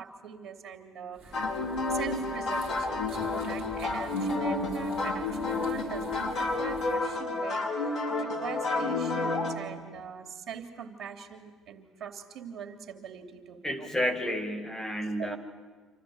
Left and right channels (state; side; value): normal; both; correlation 0.57